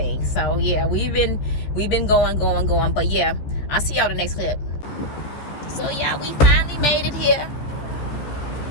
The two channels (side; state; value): right; late; 15 ms